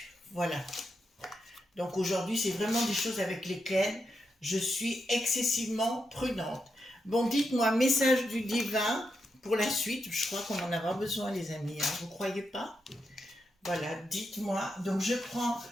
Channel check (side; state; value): both; normal; correlation 0.84